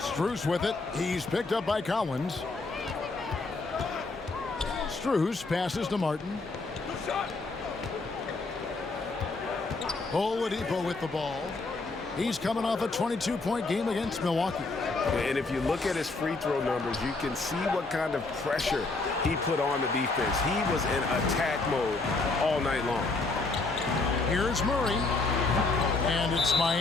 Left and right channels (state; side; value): quieter; right; 3.6 dB